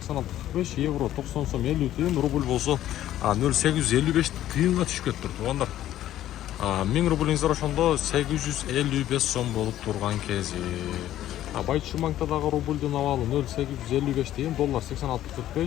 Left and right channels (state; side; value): quieter; right; 12.8 dB